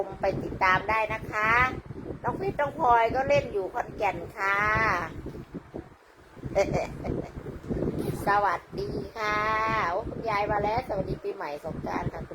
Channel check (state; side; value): identical; both; correlation 1.00